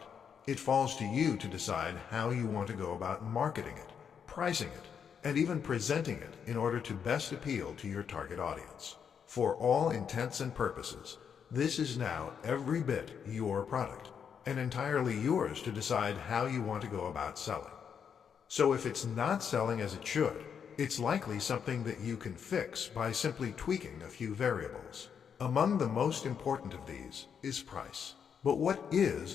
it falls to you to decide how you want to go about marketing it, pricing it, and even presenting it in order to best appeal to your target audience. For all intents and purposes, this is now every bit your product, and entirely yours to decide how you want to go about selling. So if it's not selling as it should, it's likely something that you can fix by simply tweaking a few variables. Among the most important of these is price. But what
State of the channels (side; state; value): right; quieter; 7.3 dB